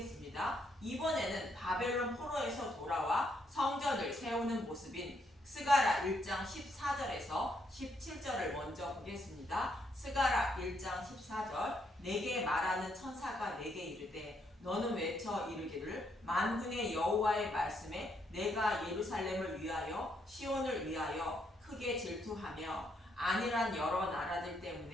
이번에는 바벨론 포로에서 돌아와 성전을 세우는 모습인 스가랴 1장 14절에서 17절을 먼저 보겠습니다. 스가랴 1장 14절 내게 말하는 천사가 내게 이르되 너는 외쳐 이르기를 만군의 여호와의 말씀에 내가 예루살렘을 위하여 시온을 위하여 크게 질투하며 안일한 여러 나라들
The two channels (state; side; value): normal; both; correlation 0.74